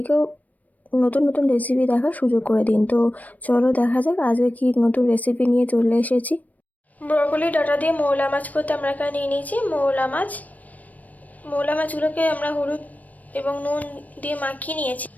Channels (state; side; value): late; right; 0.075 ms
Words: নতুন নতুন রেসিপি দেখার সুযোগ করে দিন। তো চলো দেখা যাক আজকে কি নতুন রেসিপি নিয়ে চলে এসেছি। ব্রকলি ডাঁটা দিয়ে মৌলা মাছ করতে আমরা এখানে নিয়ে নিয়েছি মৌলা মাছগুলোকে আমরা হলুদ এবং নুন দিয়ে মাখিয়ে নিয়েছি।